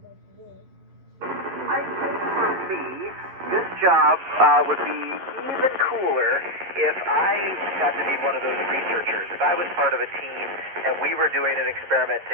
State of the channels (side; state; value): left; late; 11 ms